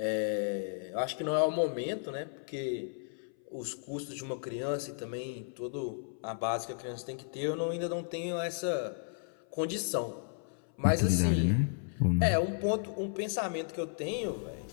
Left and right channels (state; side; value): silent; right; 55 dB below the other